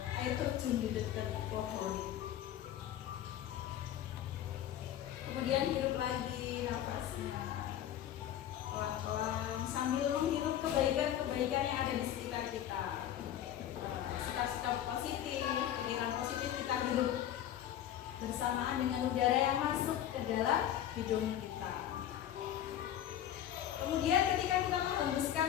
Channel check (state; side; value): quieter; right; 11.2 dB